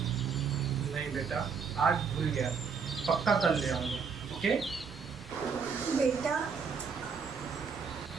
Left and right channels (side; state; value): left; quieter; 5.8 dB